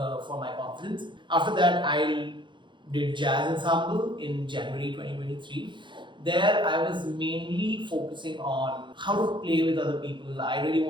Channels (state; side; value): late; left; 0.23 ms